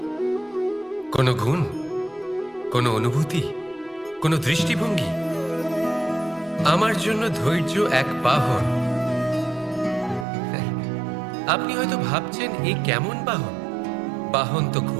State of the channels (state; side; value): drops out; left; at 10.2 s